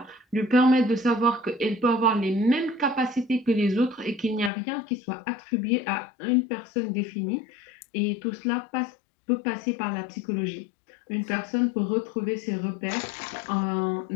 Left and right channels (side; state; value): right; drops out; at 4.5 s